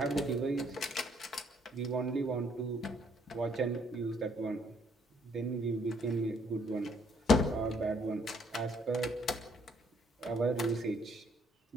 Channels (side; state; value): both; normal; correlation 0.67